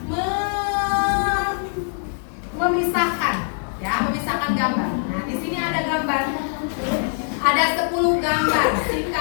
memisahkan, ya, memisahkan gambar. Nah, di sini ada gambar, ada 10 gambar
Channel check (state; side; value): silent; right; 64 dB below the other